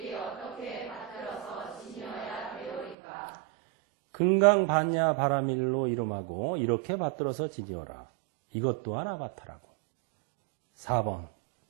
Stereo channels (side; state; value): left; drops out; at 3.0 s